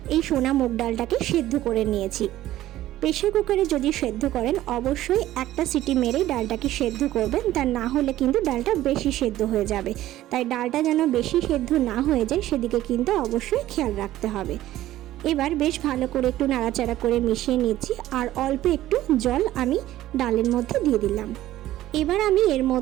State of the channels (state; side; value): quieter; left; 14.4 dB